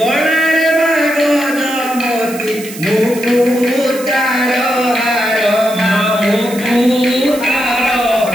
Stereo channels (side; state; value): right; noise; hiss, 14 dB below the sound